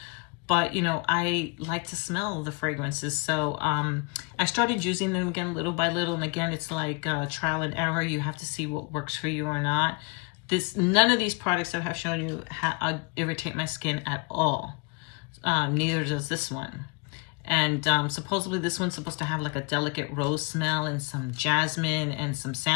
But, you know, I like to smell the fragrances. So I started using them again little by little. And again, it's like trial and error. You have to see what works for you or not. None of these products that I've shown you irritate my skin at all. Neither does this one. And supposedly this one's supposed to have like a delicate rose smell and some jasmine and some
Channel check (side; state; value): right; quieter; 31.3 dB